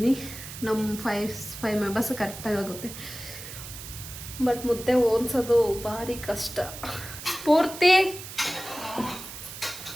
ನಮ್ಮ 5 ಮೆಂಬರ್ಸ್ ಕರೆಕ್ಟಾಗಿ ಆಗುತ್ತೆ. ಬಟ್ ಮುದ್ದೆ ಓದಿಸೋದು ಭಾರಿ ಕಷ್ಟ. ಪೂರ್ತಿ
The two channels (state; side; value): noise; right; hiss, 12 dB below the sound